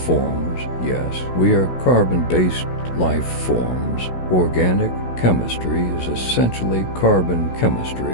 Yes, we are carbon-based life forms. Organic chemistry is essentially carbon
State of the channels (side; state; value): right; late; 16 ms